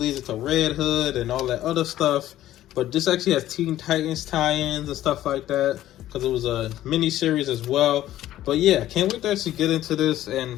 into Red Hood and all that other stuff, but this actually has Teen Titans tie-ins and stuff like that, because it was a mini-series as well. But yeah, can't wait to actually get into this,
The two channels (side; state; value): right; quieter; 13.5 dB